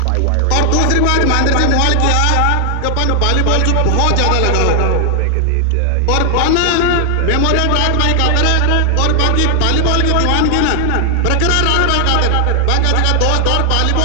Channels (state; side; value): different; both; correlation 0.00